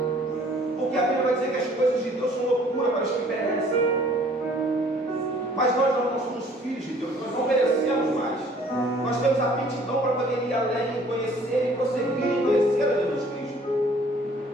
Porque a Bíblia vai dizer que as coisas de Deus são loucura para os que perecem. Mas nós não somos filhos de Deus, nós não merecemos mais. Nós temos aptidão para poder ir além, conhecer e prosseguir em conhecer a Jesus Cristo.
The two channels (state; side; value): normal; both; correlation 0.56